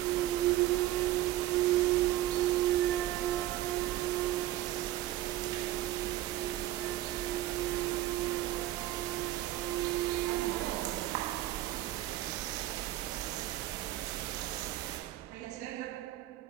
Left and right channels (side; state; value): left; quieter; 14.8 dB